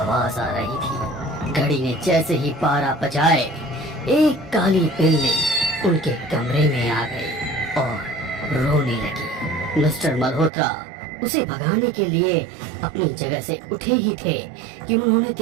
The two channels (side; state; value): left; drops out; at 10.5 s